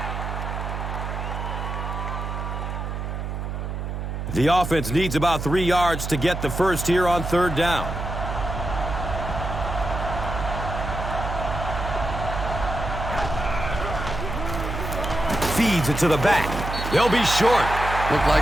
The offense needs about 3 yards to get the first here on 3rd down. Feeds it to the back. They'll be short. Looked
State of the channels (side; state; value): right; noise; hum, 4 dB below the sound